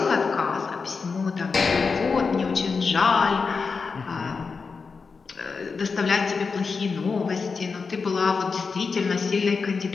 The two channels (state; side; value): quieter; right; 4.9 dB